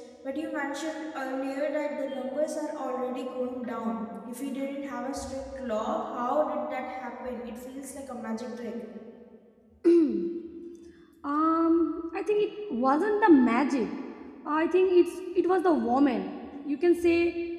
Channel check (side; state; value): both; identical; correlation 1.00